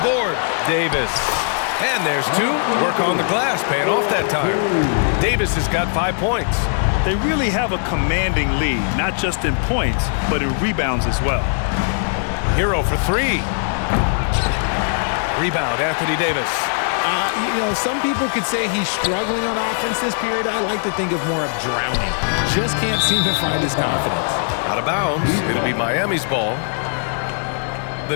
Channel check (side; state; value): right; silent; digital silence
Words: board. Davis. And there's 2. Work on the glass, paying off that time. Davis has got 5 points. They really have a commanding lead, not just in points, but in rebounds as well. Hero for 3. Rebound, Anthony Davis. Some people could say he's struggling on offense this period. I like to think of more of drowning. Just can't seem to find his confidence. Out of bounds. It'll be Miami's ball. The